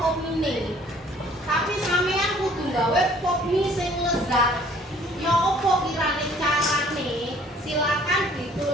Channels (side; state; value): both; normal; correlation 0.56